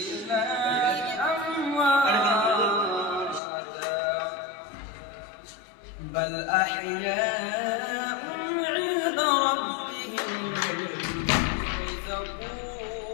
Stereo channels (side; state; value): right; drops out; at 3.4 s